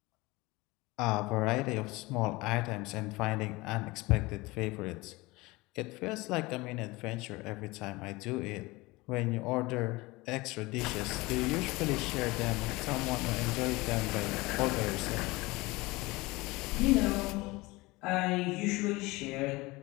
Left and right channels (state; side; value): quieter; right; 22.3 dB